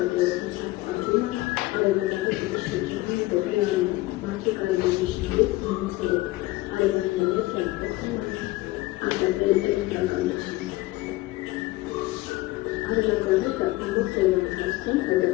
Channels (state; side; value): quieter; right; 19.4 dB